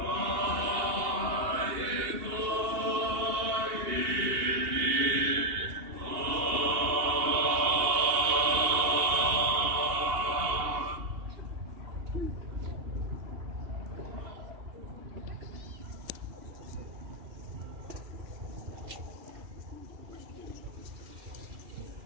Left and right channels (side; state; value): left; late; 2.8 ms